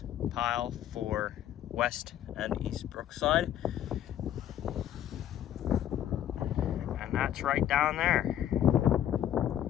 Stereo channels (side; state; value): right; quieter; 11.1 dB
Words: pile for West and East Brookside. And that's right down there.